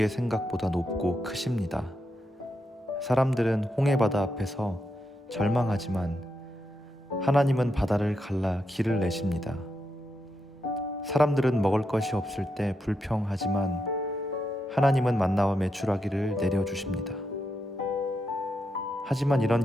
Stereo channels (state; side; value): normal; both; correlation 0.84